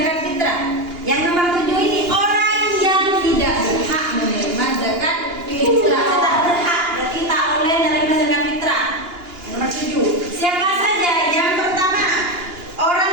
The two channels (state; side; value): late; left; 2.9 ms